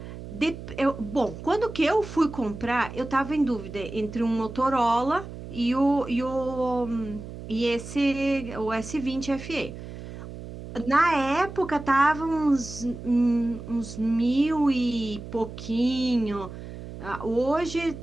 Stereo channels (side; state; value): right; noise; hum, 12 dB below the sound